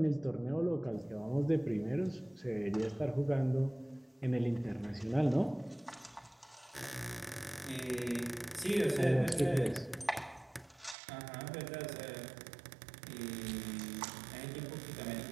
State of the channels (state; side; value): drops out; left; at 11.0 s